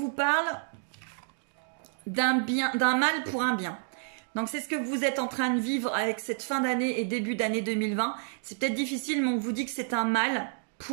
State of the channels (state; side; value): silent; left; digital silence